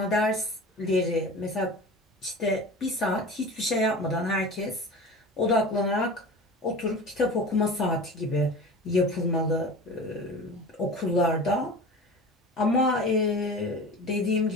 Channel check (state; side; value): normal; both; correlation 0.35